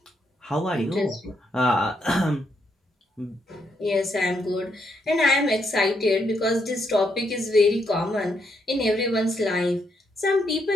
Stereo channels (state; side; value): normal; both; correlation 0.77